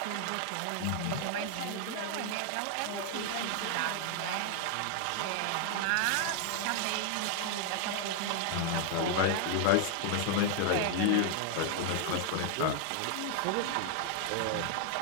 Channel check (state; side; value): different; both; correlation 0.00